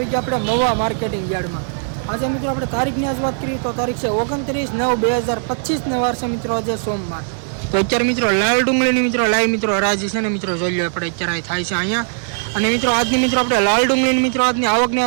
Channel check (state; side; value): silent; left; 61 dB below the other